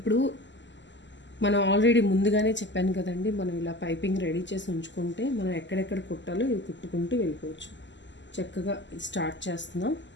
మనం ఆల్రెడీ ముందుగానే చెప్పాను కదండి, మనం ఇలా పైపింగ్ రెడీ చేసి ఉంచుకుంటే మనం ఎక్కడెక్కడ కుట్టాలో ఇవి కుట్టుకుంటూ వెళ్ళిపోవచ్చు. చక్కగా స్టార్ట్ చేస్తున్నాం.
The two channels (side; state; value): right; late; 0.53 ms